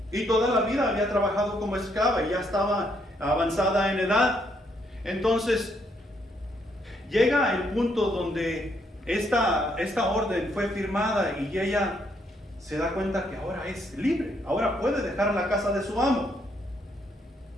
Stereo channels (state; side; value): normal; both; correlation 0.73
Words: Y toda la vida había trabajado como esclava y ya estaba avanzada en edad. Entonces, llega el punto donde esta orden fue firmada y ella se da cuenta que ahora es libre, ahora puede dejar la casa de su amo.